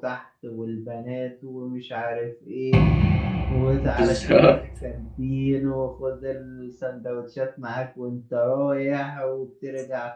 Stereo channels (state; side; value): identical; both; correlation 1.00